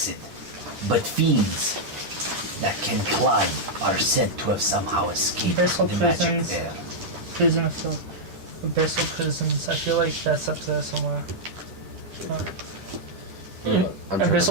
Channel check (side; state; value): left; late; 10 ms